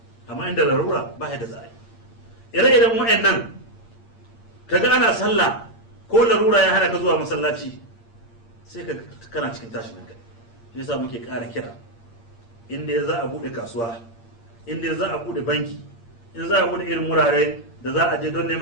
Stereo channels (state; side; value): late; right; 8.7 ms